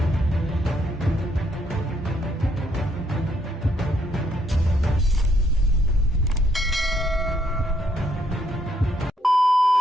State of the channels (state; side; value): normal; both; correlation 0.72